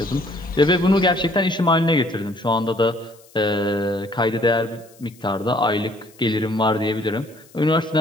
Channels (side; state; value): left; noise; hiss, 27 dB below the sound